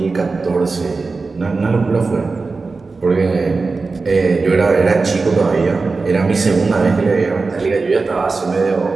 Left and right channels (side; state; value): left; quieter; 4.1 dB